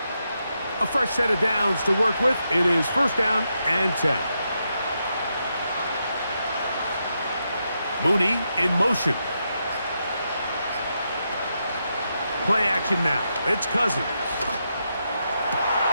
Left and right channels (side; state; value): both; inverted; correlation -0.83